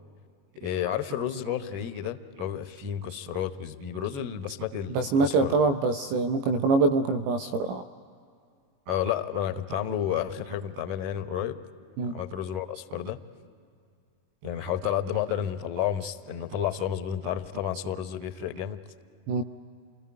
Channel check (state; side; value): late; left; 21 ms